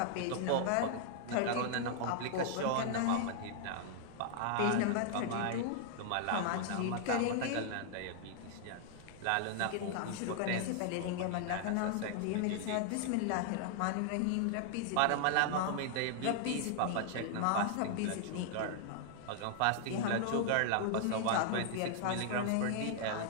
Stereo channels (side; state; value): both; different; correlation -0.01